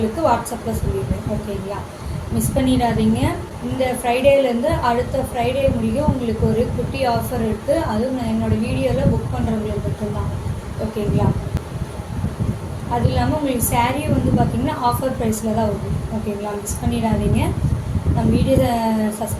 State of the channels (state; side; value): identical; both; correlation 1.00